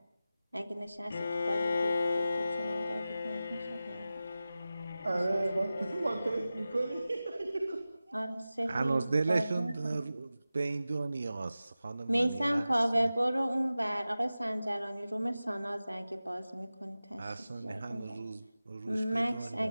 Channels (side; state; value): both; inverted; correlation -0.95